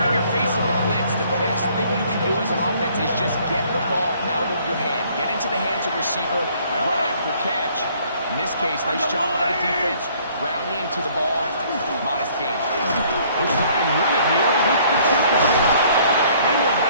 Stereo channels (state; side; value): inverted; both; correlation -0.60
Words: you're facing the blitz, the best thing you can do as an offense is just get the ball out of your hand. Get into the hands of receiver, run after catch. In this case, nice job by the defense, rallying to the ball. Modest gain. They'll try and run it here with the kickoff. They will